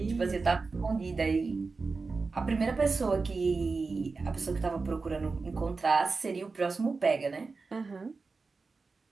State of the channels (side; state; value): left; quieter; 4.2 dB